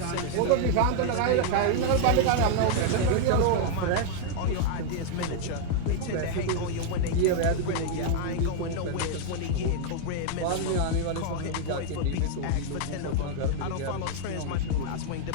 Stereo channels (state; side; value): different; both; correlation 0.00